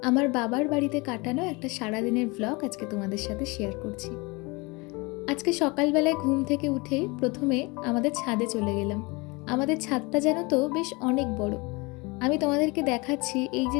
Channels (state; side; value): quieter; right; 26.4 dB